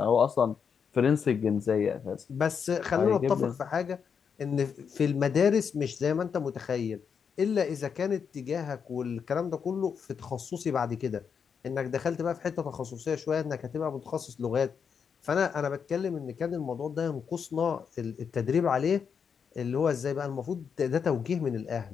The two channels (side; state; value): right; quieter; 6.7 dB